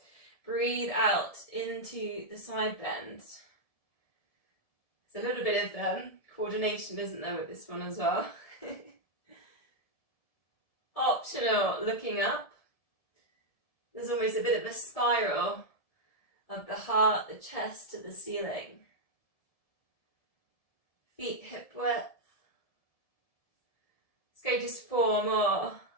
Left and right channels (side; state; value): right; late; 1.7 ms